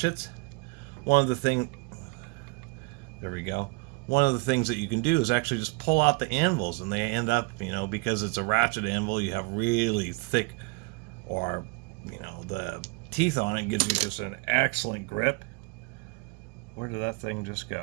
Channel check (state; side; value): quieter; left; 28.0 dB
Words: one of the things that you can do is actually just pull out the anvils, and they end up, because it's a ratchet anvil, you have really thick, or the teeth on it gives you just an excellent grip. Where did that thing just